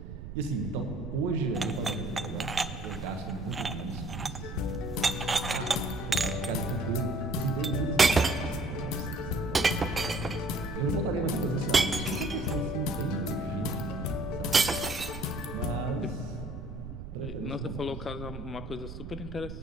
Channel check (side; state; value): right; noise; rumble, 10 dB below the sound